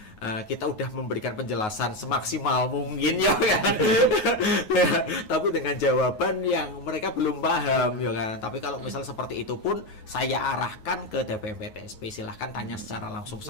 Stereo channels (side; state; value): right; late; 9.4 ms